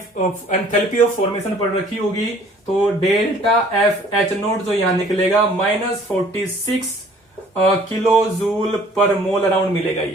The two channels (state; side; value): normal; both; correlation 0.54